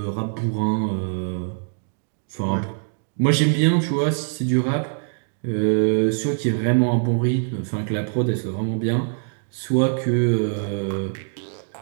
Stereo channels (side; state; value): left; silent; digital silence